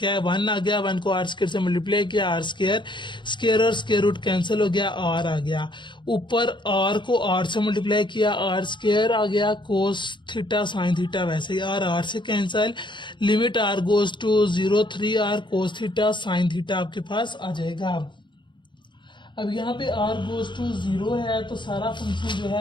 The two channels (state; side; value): late; right; 0.23 ms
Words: है, 1 आ गया, 1 को आर स्क्र से मल्टीप्लाई किया, आर स्क्र, स्क्र और स्क्र रूट कैंसिल हो गया, आर आ गया। ऊपर आर को आर से मल्टीप्लाई किया, आर स्क्र आ गया, कोस थीटा साइन थीटा वैसे ही आर से cancel. Limit r goes to 0, 3 r cos theta sine theta आपके पास आ जाएगा। अब यहाँ पे आर गोज टू 0 है तो सारा फंक्शन जो